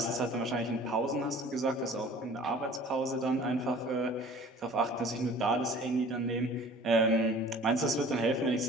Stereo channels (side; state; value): both; normal; correlation 0.47